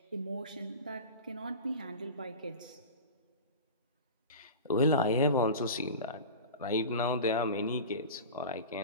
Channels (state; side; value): inverted; both; correlation -0.31